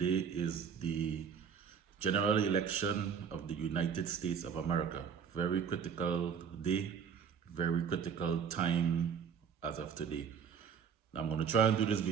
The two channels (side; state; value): left; quieter; 7.1 dB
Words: is the general election of the United States of America. Very critical day, very critical time as of today. I'm going to try and do this